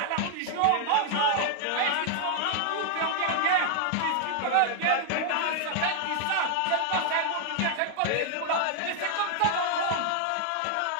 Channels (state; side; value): different; both; correlation 0.00